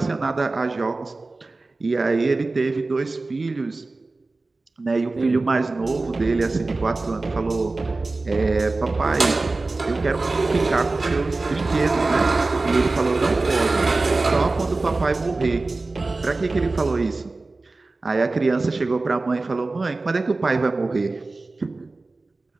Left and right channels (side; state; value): left; quieter; 3.4 dB